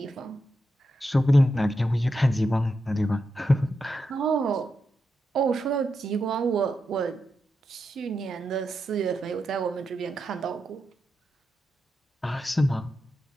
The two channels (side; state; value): both; normal; correlation 0.86